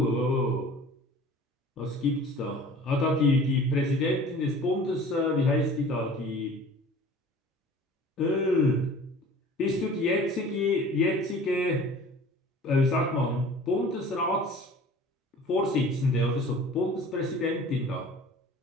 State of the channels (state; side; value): normal; both; correlation 0.45